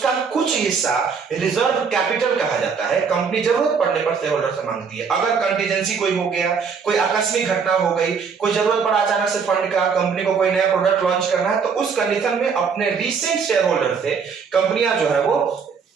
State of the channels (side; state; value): left; quieter; 5.9 dB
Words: कुछ हिस्सा रिजर्व कैपिटल कहा जाता है। कंपनी जरूरत पड़ने पर शेयर होल्डर से मांगती है। अगर कंटीजेंसी कोई हो गया, कोई आकस्मिक घटना हो गई, कोई जरूरत पड़ा अचानक से फंड का, कंपनी को कोई नया प्रोडक्ट लॉन्च करना है, तो उस कंडीशन में अपने रीसेंट शेयर होल्डर से कंपनियां जो है वो